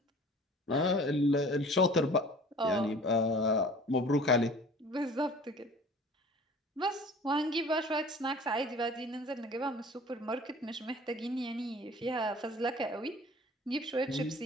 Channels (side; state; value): both; normal; correlation 0.46